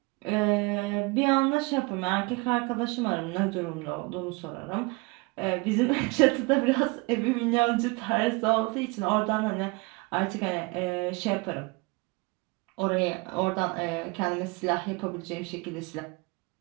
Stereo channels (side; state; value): left; quieter; 26.5 dB